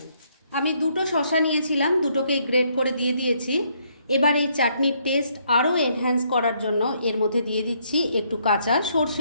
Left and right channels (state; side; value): inverted; both; correlation -0.71